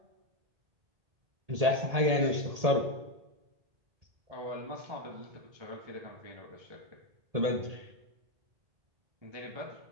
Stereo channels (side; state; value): left; late; 1.8 ms